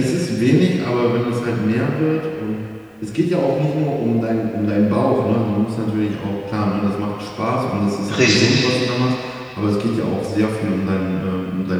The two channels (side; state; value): both; identical; correlation 1.00